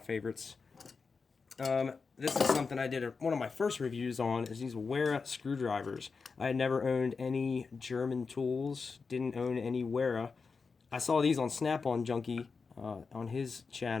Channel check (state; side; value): quieter; right; 4.9 dB